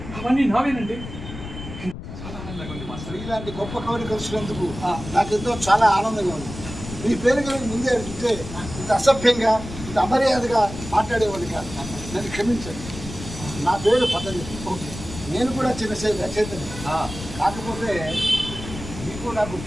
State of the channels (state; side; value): noise; left; rumble, 11 dB below the sound